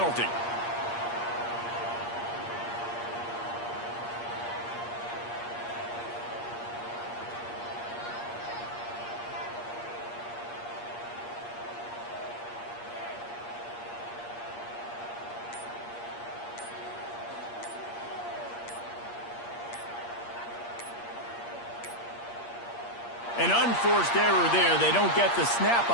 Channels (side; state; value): right; late; 8.5 ms